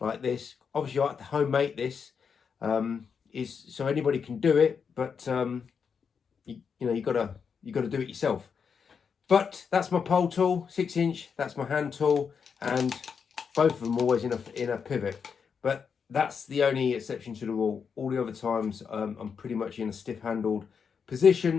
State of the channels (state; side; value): quieter; right; 6.3 dB